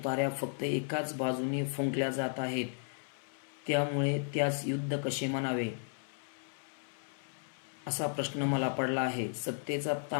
फक्त एकाच बाजूने फुंकल्या जात आहेत. त्यामुळे त्यास युद्ध कसे म्हणावे असा प्रश्न मला पडला आहे. सत्तेचा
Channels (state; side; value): silent; right; 55 dB below the other